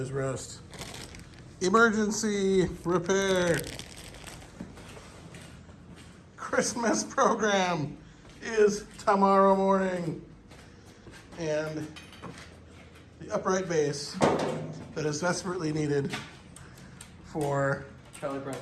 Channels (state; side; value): identical; both; correlation 1.00